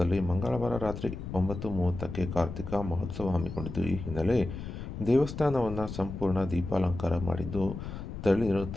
ಮಂಗಳವಾರ ರಾತ್ರಿ 9:30ಕ್ಕೆ ಕಾರ್ತಿಕ ಮಹೋತ್ಸವ ಹಮ್ಮಿಕೊಂಡಿದ್ದು, ಈ ಹಿನ್ನೆಲೆ ದೇವಸ್ಥಾನವನ್ನು ಸಂಪೂರ್ಣ ದೀಪಾಲಂಕಾರ ಮಾಡಿದ್ದು, ತಳಿರು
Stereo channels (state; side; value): noise; left; rumble, 8 dB below the sound